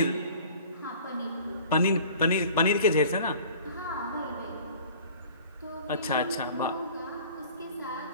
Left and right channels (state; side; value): inverted; both; correlation -0.47